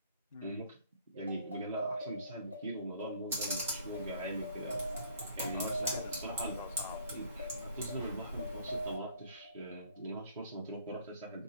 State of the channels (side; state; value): both; inverted; correlation -0.59